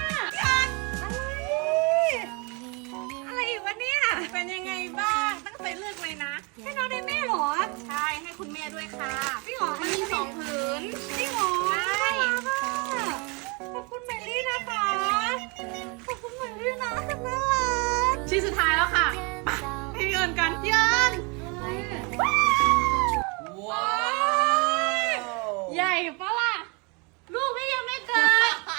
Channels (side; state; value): left; quieter; 31.2 dB